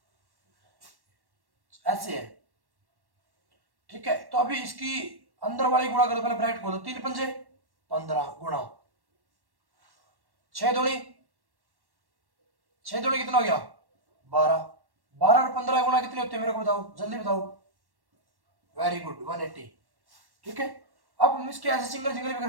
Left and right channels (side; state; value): left; late; 1.1 ms